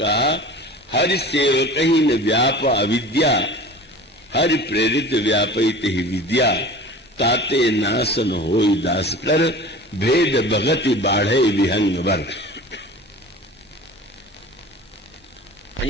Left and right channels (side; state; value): both; normal; correlation 0.39